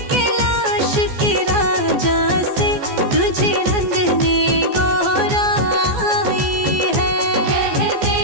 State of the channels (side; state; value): left; late; 14 ms